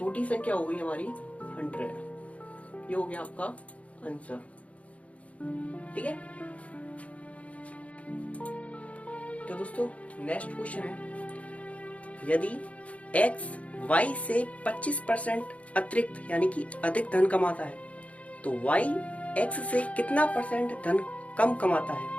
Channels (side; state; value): right; late; 0.065 ms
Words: संख्या हो गई हमारी 100। ये हो गया आपका आंसर, ठीक है। तो दोस्तों नेक्स्ट क्वेश्चन है, यदि x y से 25% अतिरिक्त यानी कि अधिक धन कमाता है तो y x से कितना परसेंट धन कम कमाता है।